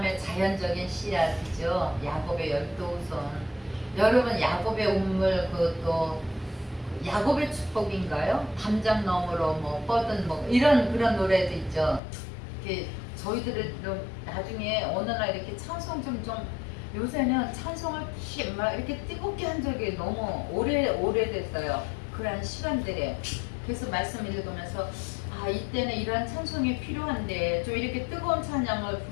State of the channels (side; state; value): right; drops out; at 12.0 s